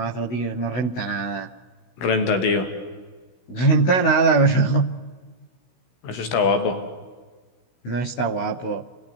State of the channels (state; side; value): late; right; 16 ms